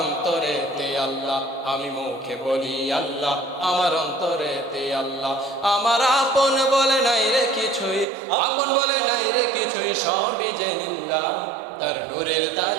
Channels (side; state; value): left; drops out; at 8.1 s